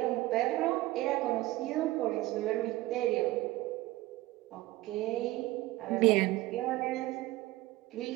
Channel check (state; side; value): quieter; left; 18.2 dB